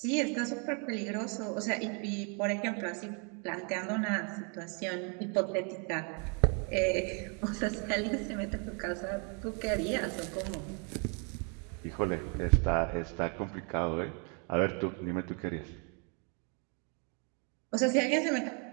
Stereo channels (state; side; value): quieter; left; 36.8 dB